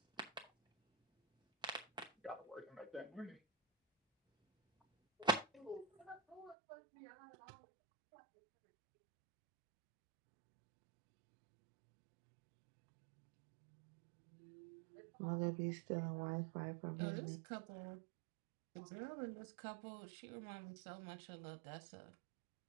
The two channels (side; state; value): left; drops out; at 6.6 s